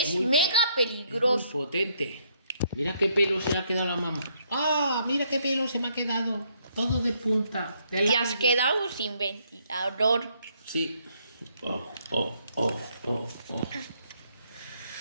mega peligroso. Es muy potente. Mira qué pelo se le ha quedado a la mamá. ¡Ah! Mira qué pelo se me ha quedado. Todo de punta. Te has quedado sin ventilador. Sí. Oh.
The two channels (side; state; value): both; inverted; correlation -0.71